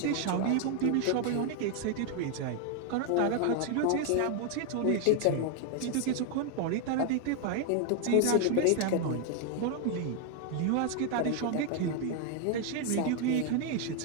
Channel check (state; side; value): different; both; correlation 0.00